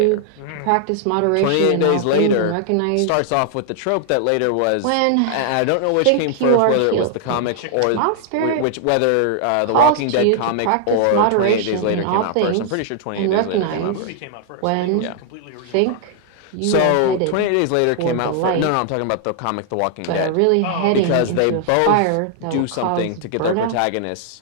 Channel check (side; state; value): both; different; correlation -0.01